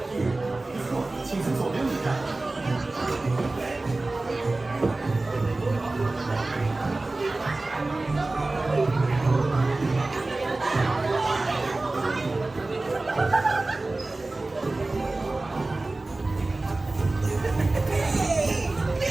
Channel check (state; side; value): quieter; left; 3.1 dB